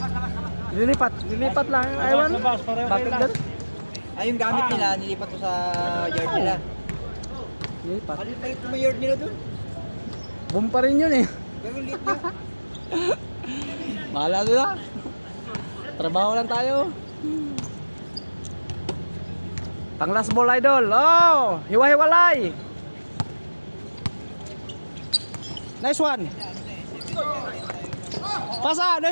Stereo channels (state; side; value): inverted; both; correlation -1.00